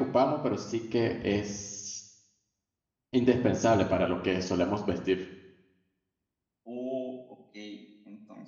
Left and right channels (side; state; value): both; identical; correlation 1.00